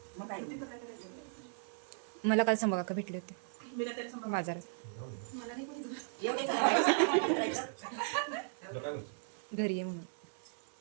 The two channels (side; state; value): left; silent; 53 dB below the other